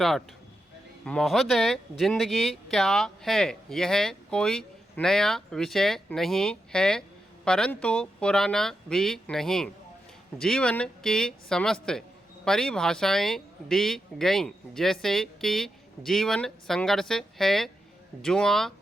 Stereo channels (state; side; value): normal; both; correlation 0.87